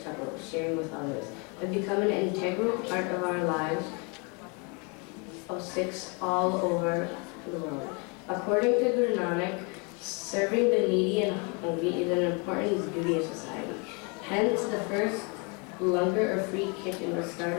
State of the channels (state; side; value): quieter; right; 32.9 dB